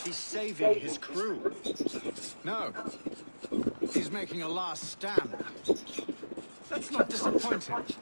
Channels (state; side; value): inverted; both; correlation -1.00